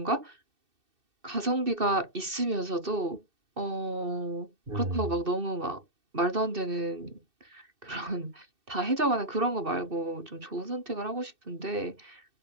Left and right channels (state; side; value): late; left; 2.6 ms